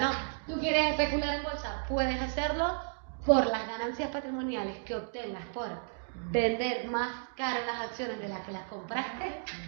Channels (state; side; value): silent; left; digital silence